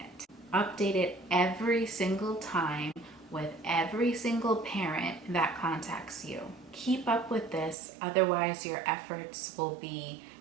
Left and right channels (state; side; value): drops out; left; at 7.8 s